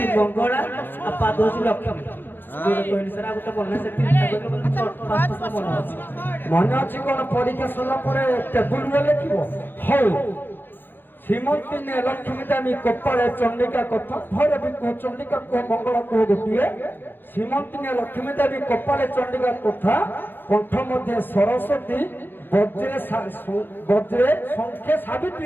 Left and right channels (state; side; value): late; right; 0.097 ms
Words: ମଙ୍ଗଳା, ଆଉ ପାଦ ହଉଛି ଲକ୍ଷ୍ମୀ। କହିଲି ସାର୍ ଆଉ ଗୋଟେ ମନେ ମନେ ଅଛି କଣ? ପରୀକ୍ଷା ସରିଲା ପରେ ଟେବୁଲରେ ଲେଖିବ। ହଉ ଶ୍ରୀମନ୍ତିନେ ଲକ୍ଷ୍ମୀ ଦାମୀ କପାଳେ ଚଣ୍ଡିକା କଥା। ଭୈରବୀ କୁହ, ଚଣ୍ଡିକା କୁହ, ମଙ୍ଗଳା କୁହ ଗୋଟିଏ। ଶ୍ରୀମନ୍ତିନେ ଲକ୍ଷ୍ମୀ ଦାମୀ କପାଳେ ଚଣ୍ଡିକା କଥା, କଣ୍ଠ ମଧ୍ୟ ସରସ୍ୱତୀ, ବଜ୍ରେ ସଂଖ୍ୟା